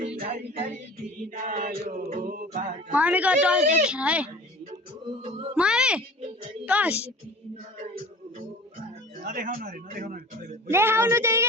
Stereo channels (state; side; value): normal; both; correlation 0.40